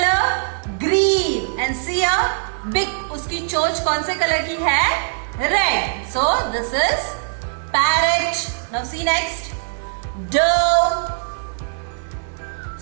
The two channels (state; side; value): silent; left; digital silence